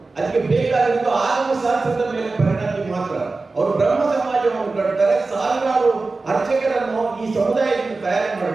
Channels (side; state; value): left; quieter; 3.7 dB